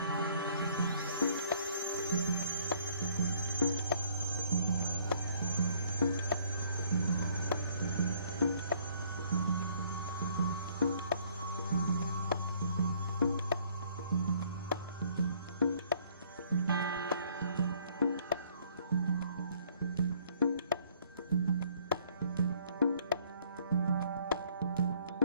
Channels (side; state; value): both; inverted; correlation -0.62